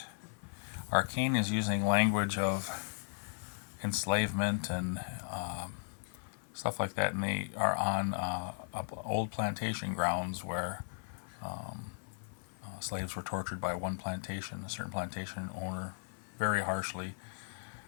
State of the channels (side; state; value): right; silent; 53 dB below the other